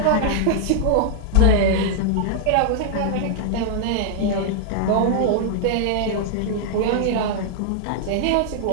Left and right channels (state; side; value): different; both; correlation -0.01